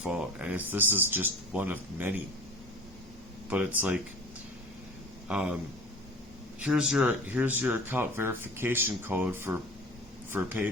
and this is just one of many. But it's like, here's your account verification code for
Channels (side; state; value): both; normal; correlation 0.39